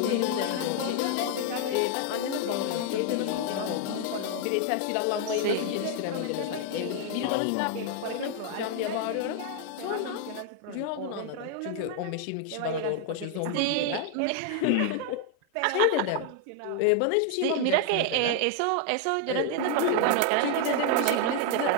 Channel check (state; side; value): different; both; correlation 0.00